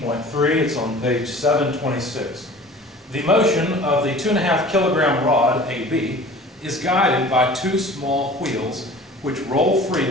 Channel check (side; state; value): both; normal; correlation 0.43